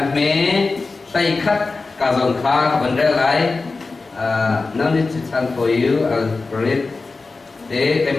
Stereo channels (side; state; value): right; quieter; 3.8 dB